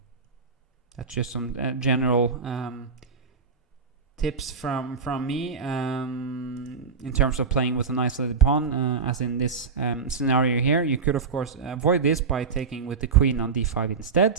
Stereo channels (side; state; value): left; quieter; 5.2 dB